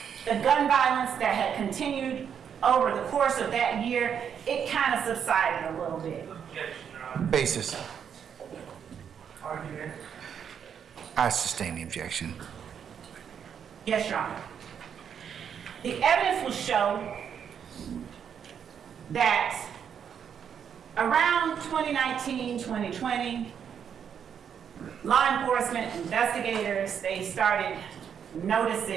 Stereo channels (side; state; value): left; quieter; 7.9 dB